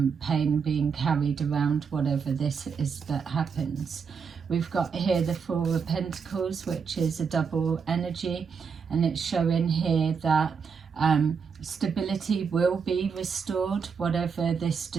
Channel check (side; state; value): left; quieter; 6.0 dB